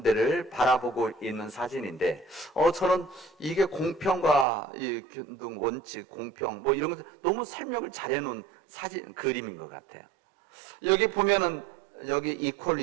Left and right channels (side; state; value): left; drops out; at 4.5 s